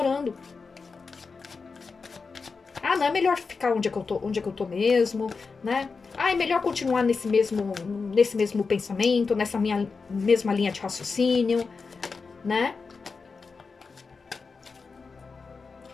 Ah, não, é melhor ficar onde é que eu tô mesmo, né? Ah, é melhor continuar nesse mesmo pensamento, nessa minha mesma linha de raciocínio, né?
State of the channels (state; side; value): quieter; right; 4.7 dB